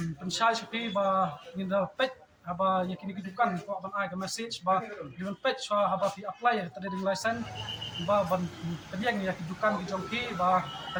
pensay sipi ba ninda pet haba yakini kidukan ko ban ay ka message ba diwan pet so haba fi apply ya trading license ba ban kadiang ya kidukan kijongki ba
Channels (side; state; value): both; identical; correlation 1.00